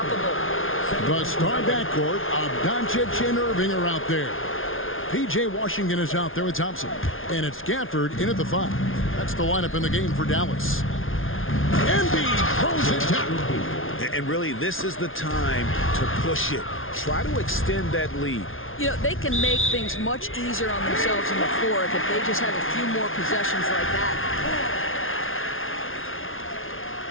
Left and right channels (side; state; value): right; late; 0.59 ms